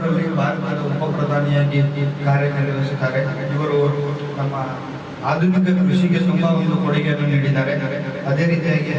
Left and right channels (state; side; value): identical; both; correlation 1.00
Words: ಭಾರತದ ಉಪ ಪ್ರಧಾನಿಯಾಗಿ ಕಾರ್ಯನಿರ್ವಹಿಸಿದ್ದಾರೆ. ಇವರು ನಮ್ಮ ಆಧುನಿಕ ಕೃಷಿಗೆ ತುಂಬಾ ಒಂದು ಕೊಡುಗೆಯನ್ನು ನೀಡಿದ್ದಾರೆ. ಅದೇ ರೀತಿಯಾಗಿ